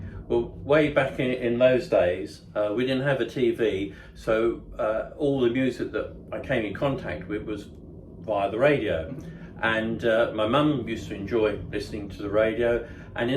Well, way back in those days, we didn't have a TV, so all the music that I came in contact with was via the radio. And my mum used to enjoy listening to the radio. And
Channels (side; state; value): both; identical; correlation 1.00